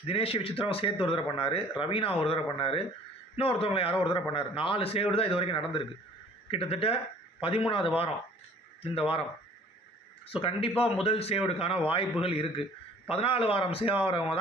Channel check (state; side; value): normal; both; correlation 0.52